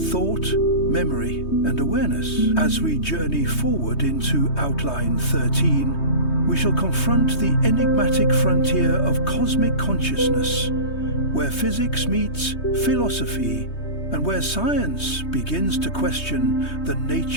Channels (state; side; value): late; right; 3.2 ms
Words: thought, memory, and awareness? As we journey forward into Outline 13, we shall confront the enigmatic frontier of cosmic consciousness, where physics meets philosophy, and where science begins to question the